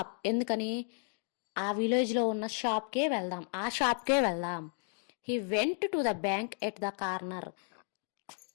ఎందుకని, ఆ విలేజ్లో ఉన్న షాప్కే వెళ్దాం, ఆ షాప్కే వెళ్దాం. He went to the bank at the corner.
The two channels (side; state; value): right; silent; 55 dB below the other